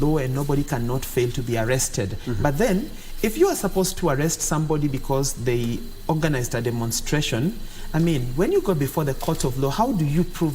and nobody cannot fail to be arrested. But then, if you are supposed to arrest somebody because they organized a demonstration, I mean, when you go before the court of law, how do you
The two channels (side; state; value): both; identical; correlation 1.00